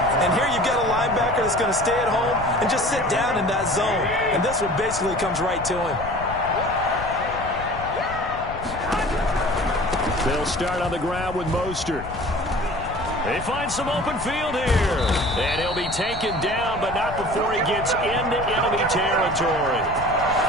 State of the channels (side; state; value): left; noise; rumble, 11 dB below the sound